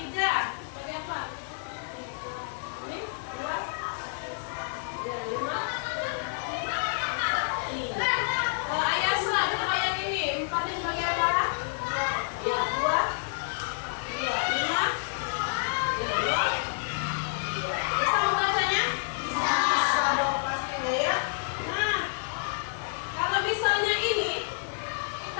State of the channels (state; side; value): silent; right; digital silence